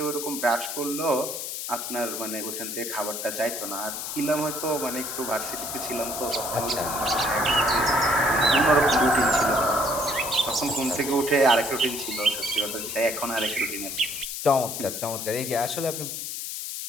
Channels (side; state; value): left; noise; hiss, 5 dB below the sound